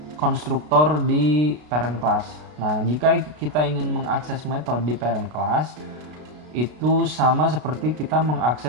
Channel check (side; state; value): left; late; 33 ms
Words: konstruktor di parent class. Nah, jika kita ingin mengakses metode di parent class, itu sama seperti kita